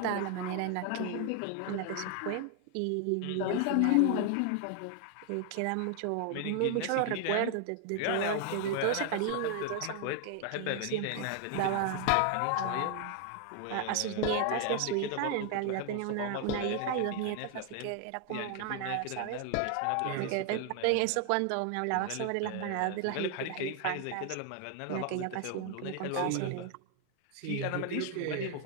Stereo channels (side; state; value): both; different; correlation 0.00